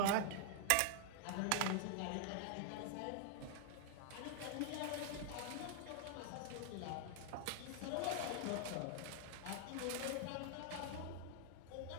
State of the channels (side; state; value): both; different; correlation 0.00